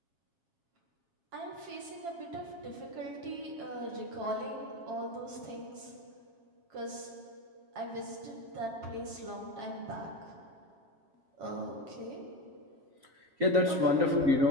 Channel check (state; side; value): late; left; 7.3 ms